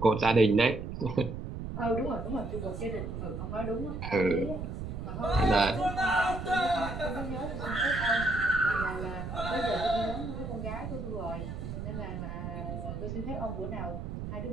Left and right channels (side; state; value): right; noise; rumble, 6 dB below the sound